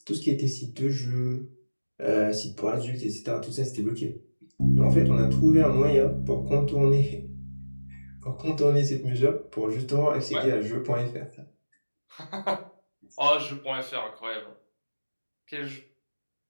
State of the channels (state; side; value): inverted; both; correlation -1.00